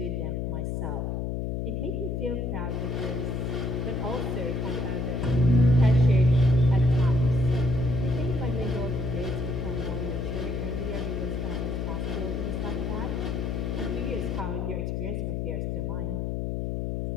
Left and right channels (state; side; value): noise; left; hum, 1 dB below the sound